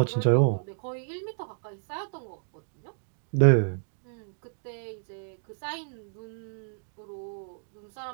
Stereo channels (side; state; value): left; silent; digital silence